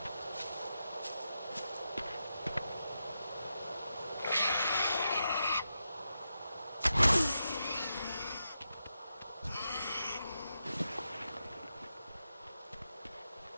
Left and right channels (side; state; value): both; inverted; correlation -0.87